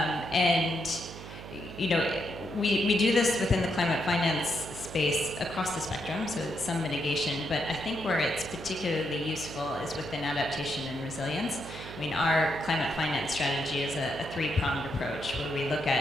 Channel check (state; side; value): noise; right; hum, 13 dB below the sound